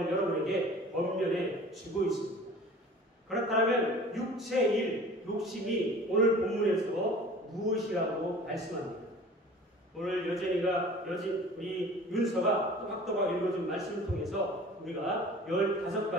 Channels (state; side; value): normal; both; correlation 0.44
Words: 여러분에게 권면해 주고 있습니다. 그렇다면 육체의 일, 욕심이 오늘 본문에서 무엇이라고 말씀합니다. 오늘 우리 윤서가 또박또박 읽어준 말씀을 통해서 우리가